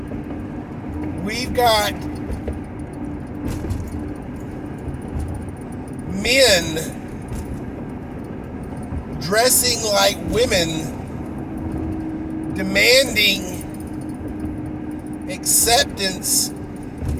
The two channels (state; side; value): identical; both; correlation 1.00